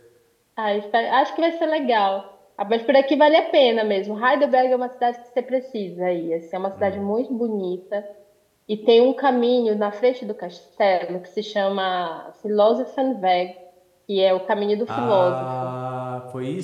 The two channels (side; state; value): both; identical; correlation 1.00